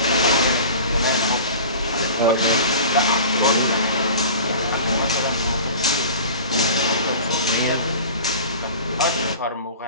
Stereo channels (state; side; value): inverted; both; correlation -0.39